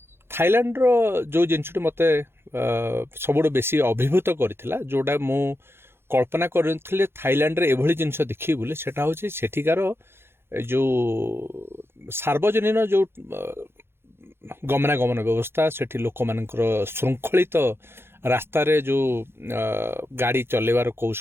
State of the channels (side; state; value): left; late; 0.11 ms